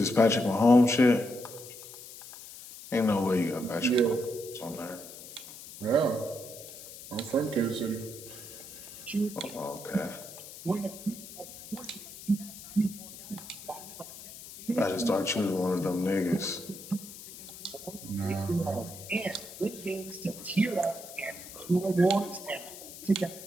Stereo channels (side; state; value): left; noise; hiss, 14 dB below the sound